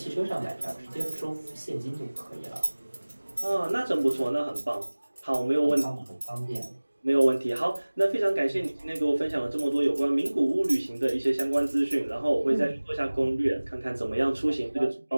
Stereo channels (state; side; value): inverted; both; correlation -1.00